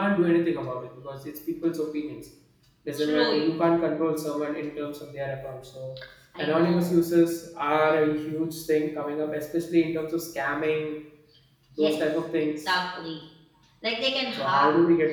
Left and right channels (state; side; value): identical; both; correlation 1.00